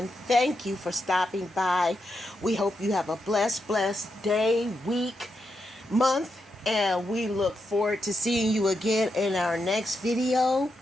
Thank you for stopping by. We hope you have a blessed day, week, month, and we look forward to seeing you again in our next video.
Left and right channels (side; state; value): both; normal; correlation 0.84